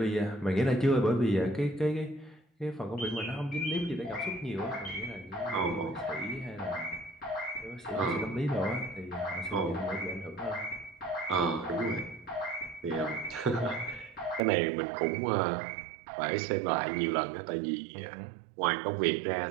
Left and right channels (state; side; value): drops out; left; at 14.4 s